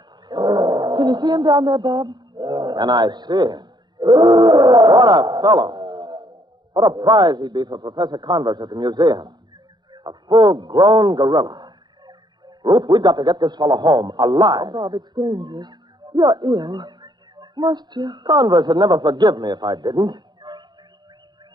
Can you see him down there, Bob? And I see him. What a fellow. What a prize he'd be for Professor Converse at the museum. A full-grown gorilla. Ruth, we've got to get this fellow home, alive. Oh, Bob, it's dangerous. You're ill. Must you? Converse would never forgive me if I didn't.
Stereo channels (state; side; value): late; left; 0.21 ms